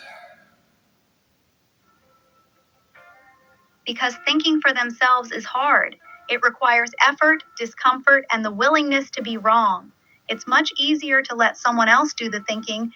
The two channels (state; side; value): identical; both; correlation 1.00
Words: Because thinking for themselves is hard. It requires effort, discomfort, and the willingness to be wrong. It's much easier to let someone else do the thinking